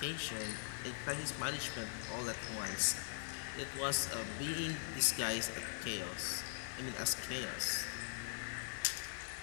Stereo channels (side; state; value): right; silent; digital silence